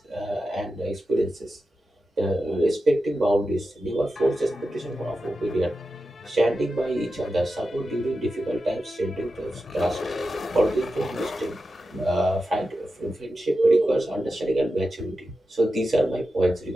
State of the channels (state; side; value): normal; both; correlation 0.91